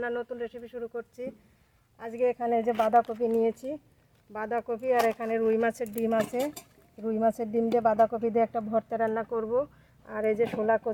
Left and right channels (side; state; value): both; identical; correlation 1.00